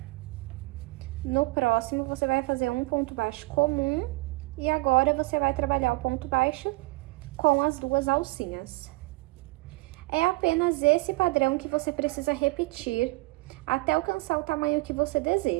No próximo, você vai fazer um ponto baixo comum e agora você vai trabalhar o ponto baixo com as 2 alcinhas. É apenas esse padrão que você precisa repetir até alcançar o tamanho que você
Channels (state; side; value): quieter; left; 23.9 dB